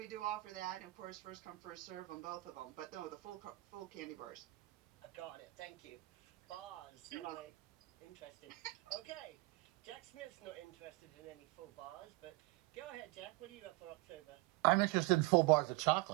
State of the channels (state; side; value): quieter; left; 21.2 dB